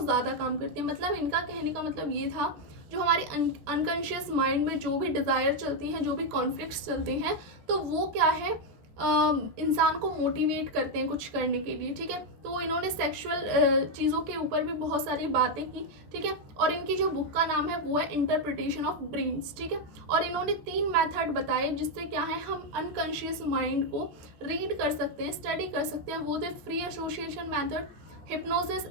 काम करते हैं। मतलब इनका कहने का मतलब ये था, जो हमारे अनकॉन्शियस माइंड में जो भी डिज़ायर चलती हैं, जो भी कॉन्फ्लिक्ट्स चलते हैं, तो वो क्या है, इंसान को मोटिवेट करते हैं कुछ करने के लिए। ठीक है, तो इन्होंने सेक्सुअल चीज़ों के ऊपर भी बहुत सारी बातें की। ठीक है, और इनकी जो बुक का नाम है वो है इंटरप्रिटेशन ऑफ ड्रीम्स। ठीक है, और इन्होंने 3 मेथड बताए जिससे क्या है, हम अनकॉन्शियस माइंड को रीड कर सकते हैं, स्टडी कर सकते हैं। वो थे free association method, hypnosis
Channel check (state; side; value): late; left; 14 ms